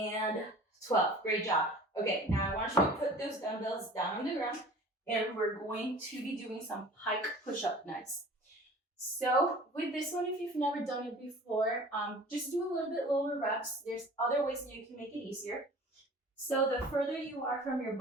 12. Great job. Okay, now I want you to put those dumbbells down on the ground and we're going to be doing some pike push-up next. So with this one, if you've never done it before, just do a little bit lower reps. There's other ways that you can make it easier. So the further you are from your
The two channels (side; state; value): both; normal; correlation 0.44